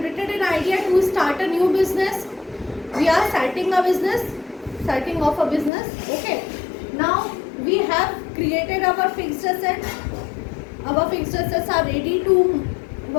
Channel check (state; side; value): drops out; right; at 5.7 s